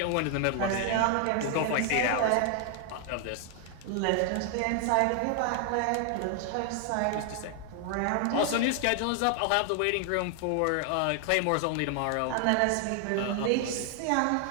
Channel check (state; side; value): different; both; correlation 0.00